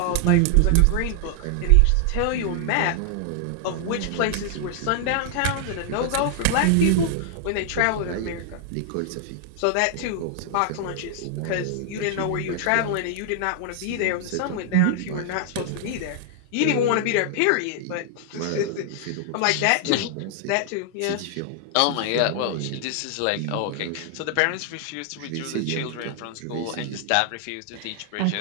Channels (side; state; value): both; different; correlation 0.00